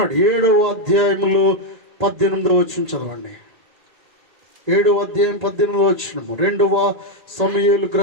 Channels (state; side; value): late; left; 1.8 ms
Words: 7వ అధ్యాయములో 18వ వచనం చదవండి. 7వ అధ్యాయం 18వ వచనం. 2వ సమూయేలు